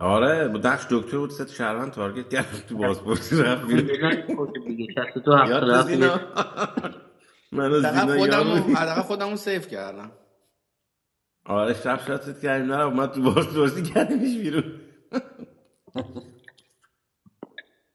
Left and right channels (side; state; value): both; identical; correlation 1.00